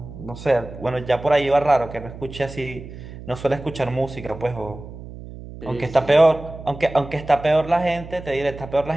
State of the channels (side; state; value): right; noise; hum, 14 dB below the sound